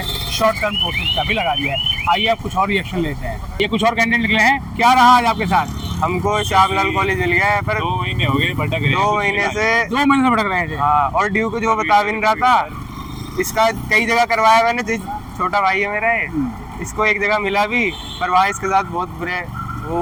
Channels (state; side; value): identical; both; correlation 1.00